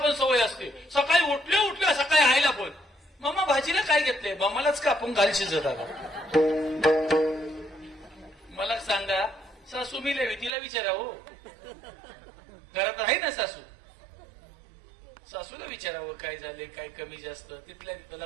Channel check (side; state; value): left; drops out; at 10.5 s